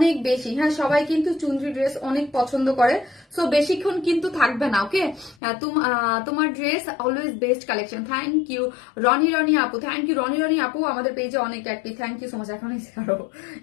বেশি। হ্যাঁ সবাই কিন্তু চুনরি ড্রেস অনেক পছন্দ করে, সো বেশিক্ষণ কিন্তু থাকবে না। ওকে তোমার dress always best collection, thank you Roni আপু, থ্যাংক ইউ রনি আপু, আমাদের পেজে অনেক active, thank you so much. এখন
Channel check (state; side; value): drops out; right; at 5.4 s